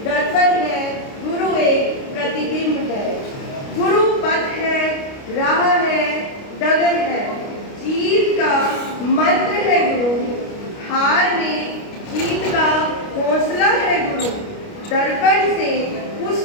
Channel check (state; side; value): late; right; 29 ms